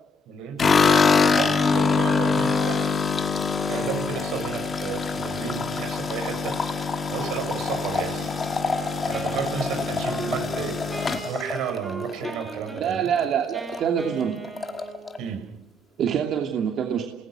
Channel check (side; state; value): both; normal; correlation 0.71